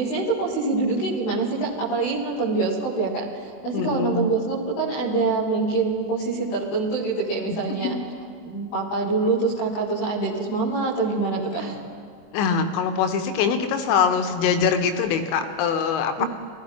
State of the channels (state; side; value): late; right; 24 ms